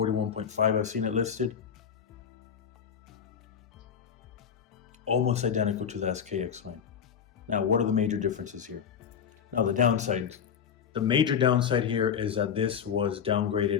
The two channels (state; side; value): quieter; right; 7.6 dB